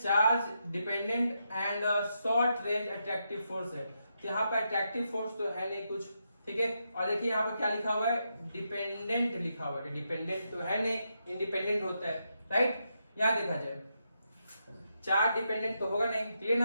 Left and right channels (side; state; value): both; inverted; correlation -0.83